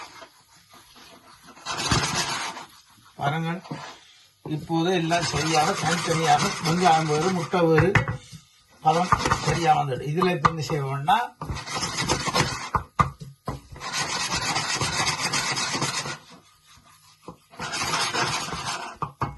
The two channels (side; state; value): both; identical; correlation 1.00